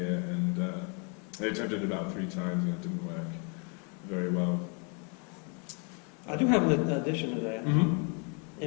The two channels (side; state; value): right; quieter; 36.8 dB